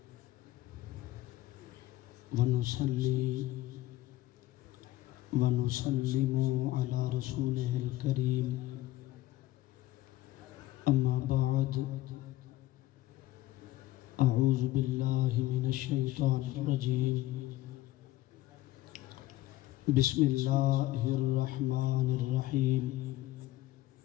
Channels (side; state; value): right; quieter; 16.3 dB